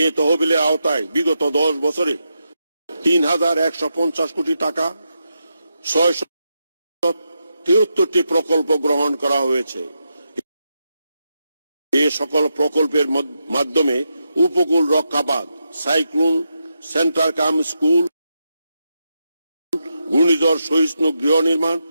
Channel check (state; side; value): inverted; both; correlation -0.86